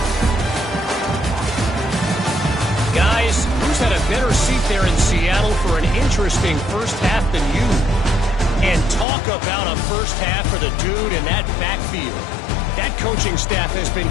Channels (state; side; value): drops out; right; at 9.1 s